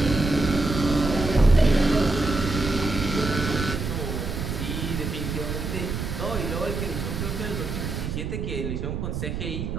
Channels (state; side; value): noise; right; rumble, 4 dB below the sound